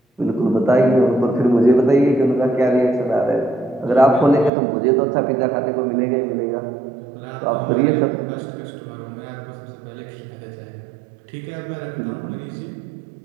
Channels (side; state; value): left; drops out; at 4.5 s